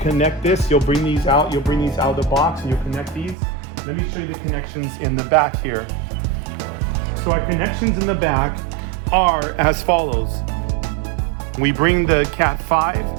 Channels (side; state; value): left; drops out; at 3.4 s